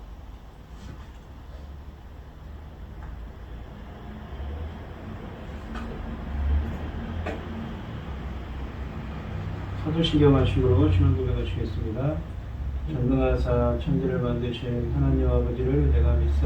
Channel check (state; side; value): identical; both; correlation 1.00